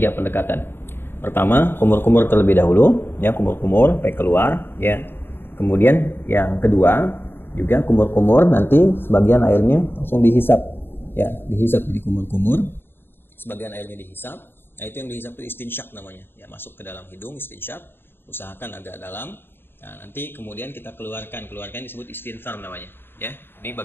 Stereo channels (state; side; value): late; right; 0.10 ms